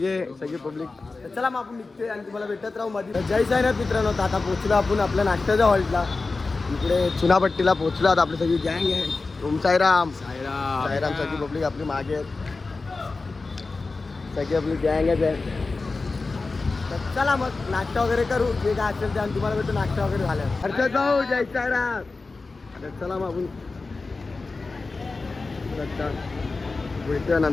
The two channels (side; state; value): right; quieter; 3.8 dB